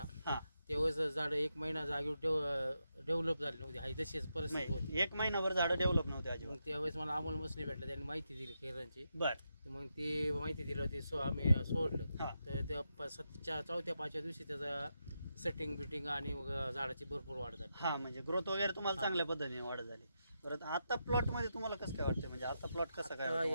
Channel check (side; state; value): both; inverted; correlation -0.85